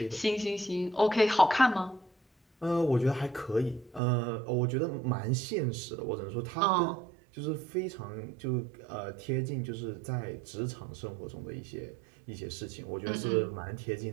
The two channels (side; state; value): left; drops out; at 4.0 s